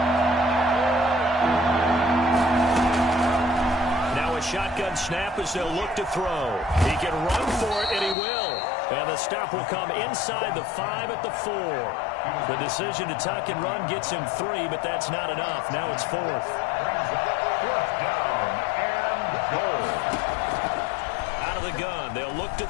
Shotgun snap as they'll look to throw. He can run for it, and he will. And the stop will come inside the 5 at the 4. The decision to tuck and run gets him 3, but that's not enough. Now it's 4th. 4th down and goal. Out of the gun, they'll look to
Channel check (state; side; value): drops out; right; at 8.2 s